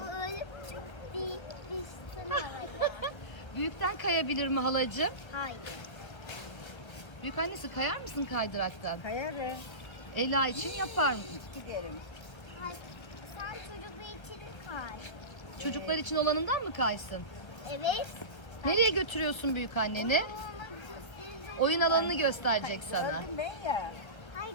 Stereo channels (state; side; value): late; right; 1.5 ms